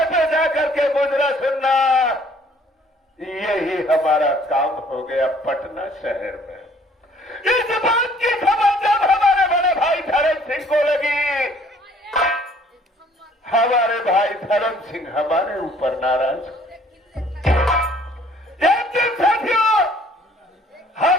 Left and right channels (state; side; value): normal; both; correlation 0.58